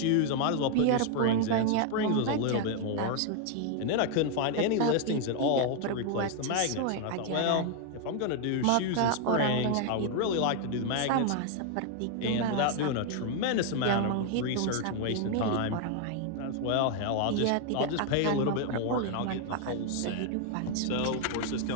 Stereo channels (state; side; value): different; both; correlation 0.00